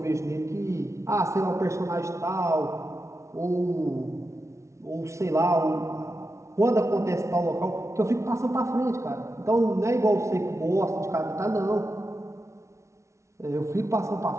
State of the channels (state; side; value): late; left; 0.14 ms